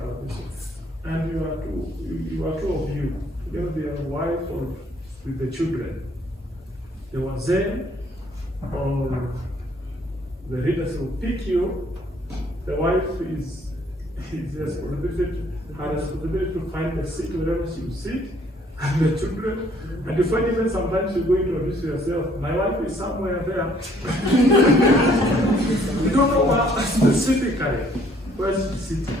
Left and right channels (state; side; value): normal; both; correlation 0.63